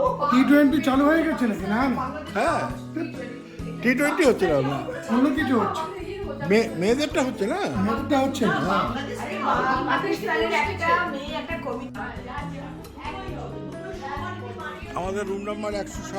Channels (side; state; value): both; identical; correlation 1.00